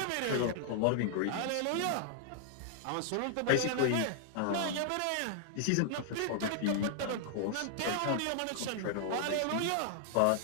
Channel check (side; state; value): both; different; correlation 0.00